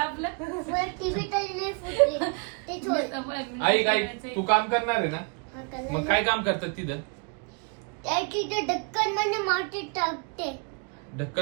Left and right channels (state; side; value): quieter; left; 34.7 dB